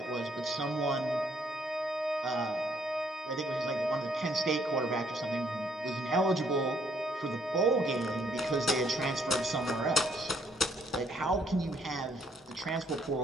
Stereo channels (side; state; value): both; normal; correlation 0.68